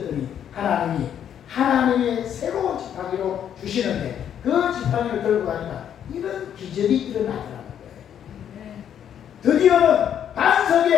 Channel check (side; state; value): right; quieter; 9.4 dB